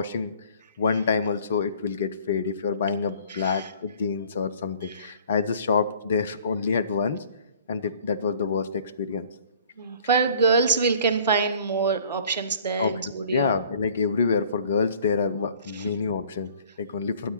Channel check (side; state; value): both; inverted; correlation -0.53